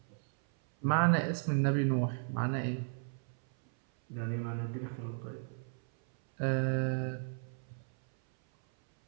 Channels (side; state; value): left; silent; 55 dB below the other